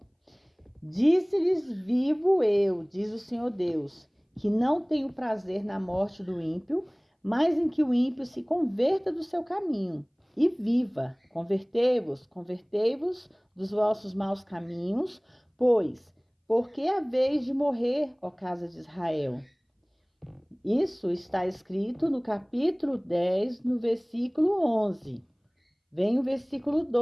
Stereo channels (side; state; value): both; identical; correlation 1.00